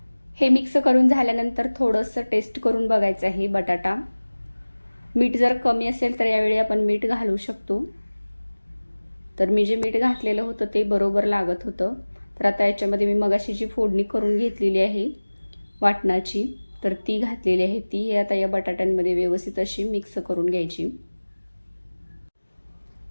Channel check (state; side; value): inverted; both; correlation -1.00